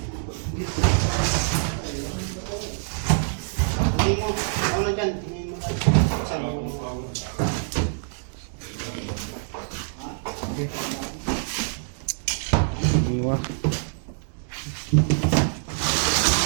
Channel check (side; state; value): left; silent; digital silence